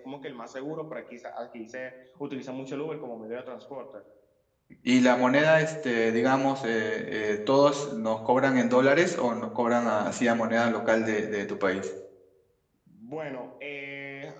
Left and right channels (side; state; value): both; identical; correlation 1.00